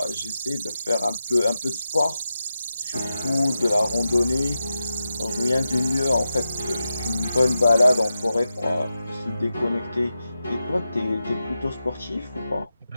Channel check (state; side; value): inverted; both; correlation -0.90